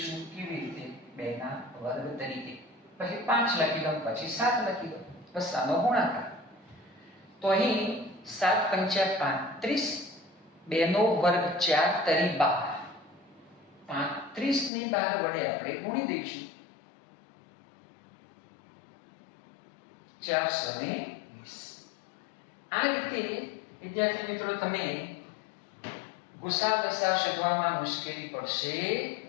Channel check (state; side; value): drops out; right; at 14.7 s